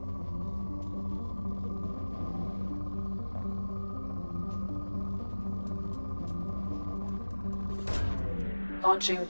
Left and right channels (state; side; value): inverted; both; correlation -1.00